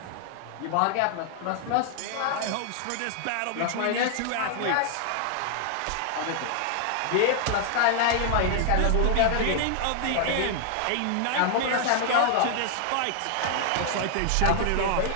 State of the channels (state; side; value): different; both; correlation 0.00